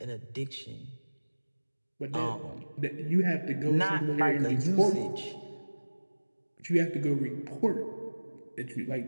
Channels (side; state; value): both; inverted; correlation -1.00